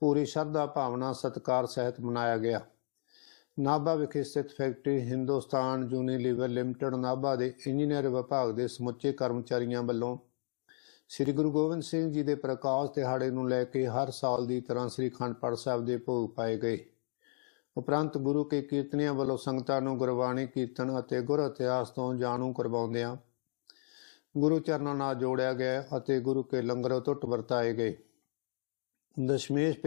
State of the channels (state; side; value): silent; right; digital silence